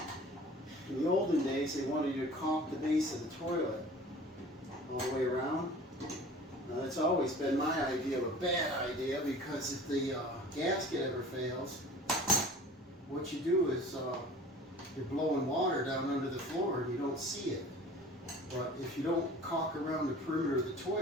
In the olden days, they wanted you to caulk the base of the toilet all the way around. Now that's always been my idea of a bad idea, because if the gasket ever fails, what you do is you're blowing water down under the floor and you don't see it. But if you don't caulk around the perimeter of the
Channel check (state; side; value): normal; both; correlation 0.43